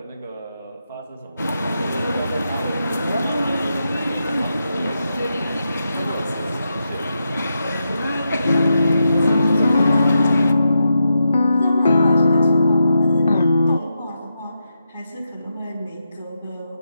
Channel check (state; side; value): inverted; both; correlation -0.86